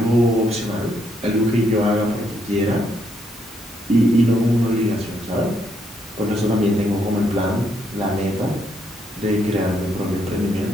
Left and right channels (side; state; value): both; normal; correlation 0.75